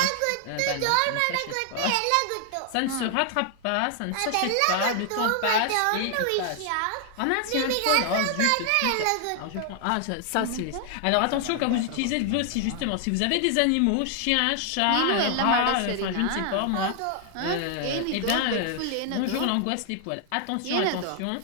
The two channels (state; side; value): different; both; correlation 0.00